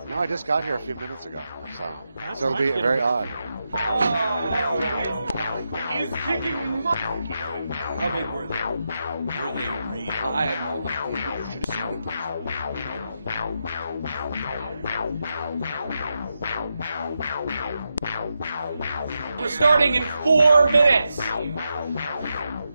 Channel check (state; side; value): inverted; both; correlation -0.86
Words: No, I just got here a few minutes ago, so it'll be very odd. He's kicking my. How big were they? Were they real? I have no idea. You should have seen them. We're starting in 4 minutes.